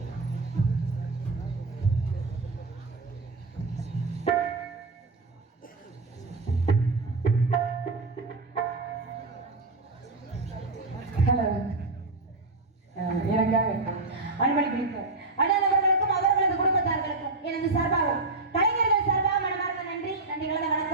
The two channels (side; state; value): left; quieter; 3.4 dB